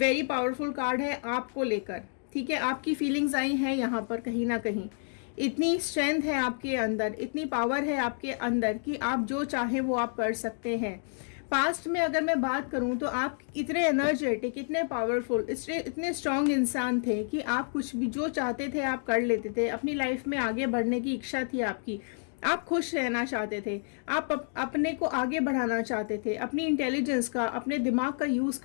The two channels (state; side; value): silent; right; 58 dB below the other